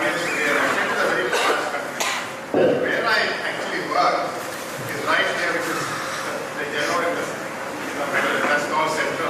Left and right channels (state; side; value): identical; both; correlation 1.00